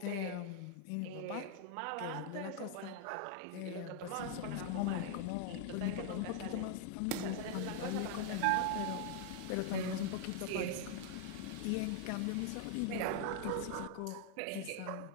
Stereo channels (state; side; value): different; both; correlation 0.00